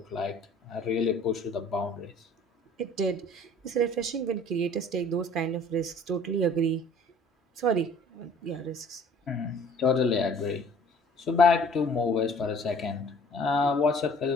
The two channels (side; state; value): both; normal; correlation 0.52